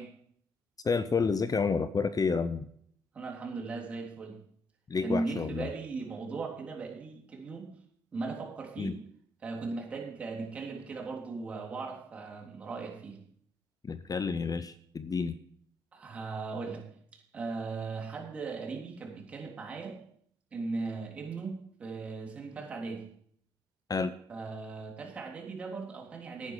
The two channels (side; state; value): both; normal; correlation 0.76